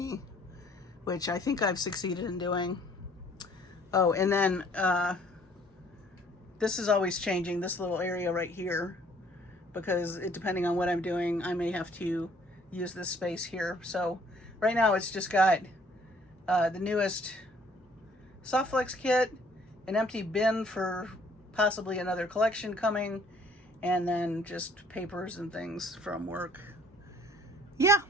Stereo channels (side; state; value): both; normal; correlation 0.59